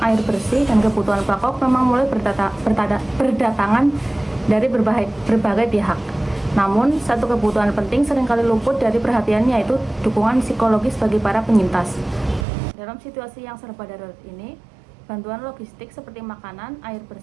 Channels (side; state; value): left; drops out; at 12.5 s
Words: air bersih, dan kebutuhan pokok memang mulai berdatangan dari berbagai pihak. Namun, satu kebutuhan penting seringkali luput dari perhatian, yaitu dukungan psikologis bagi para penyintas. Dalam situasi yang serba darurat ini, bantuan logistik seperti makanan, air